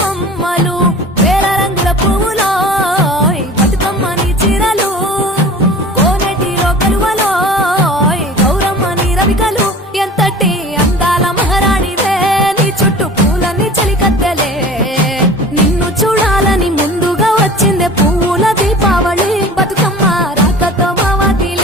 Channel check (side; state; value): both; normal; correlation 0.40